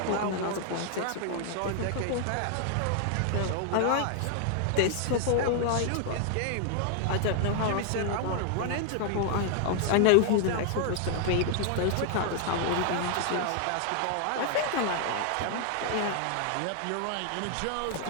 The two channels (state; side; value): different; both; correlation 0.00